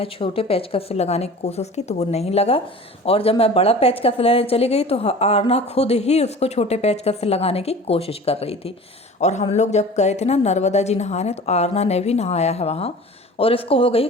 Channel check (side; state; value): both; normal; correlation 0.40